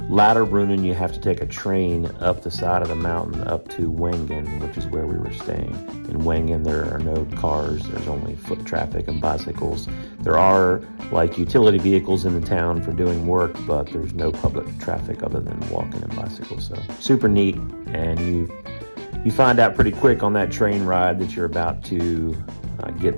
Lauterbrunnen, you have to take a train up the side of the mountain up to Wengen, which is where we were staying. In Wengen, there are no cars. There's only foot traffic and bicycles. There are like utility vehicles in the town for doing work, but there's no public traffic other than walking and bicycles. So super neat, and you find out pretty quick on that train ride that you're about to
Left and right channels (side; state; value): both; inverted; correlation -1.00